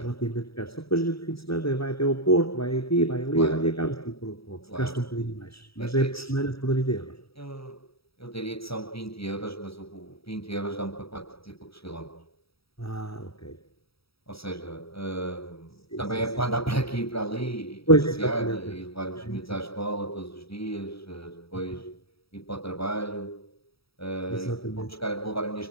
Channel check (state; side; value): late; right; 0.76 ms